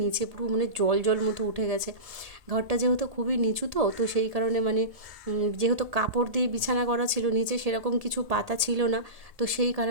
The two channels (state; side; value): late; left; 1.8 ms